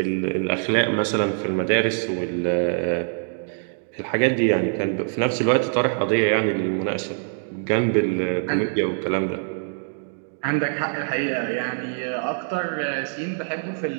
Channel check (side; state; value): left; silent; digital silence